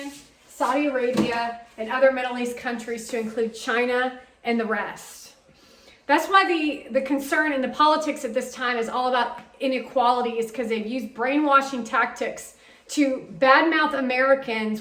Saudi Arabia, and other Middle East countries to include China and the rest. That's why the concern in the politics at this time is all about inequality, is because they've used brainwashing tactics to badmouth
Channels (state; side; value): identical; both; correlation 1.00